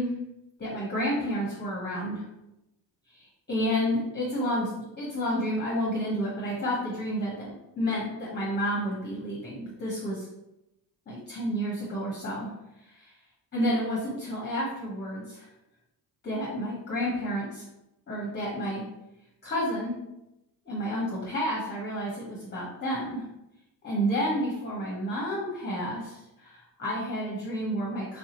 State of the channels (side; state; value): both; normal; correlation 0.32